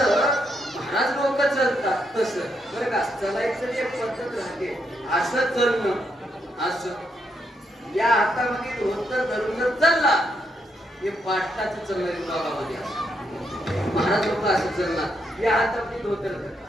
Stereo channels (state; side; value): normal; both; correlation 0.78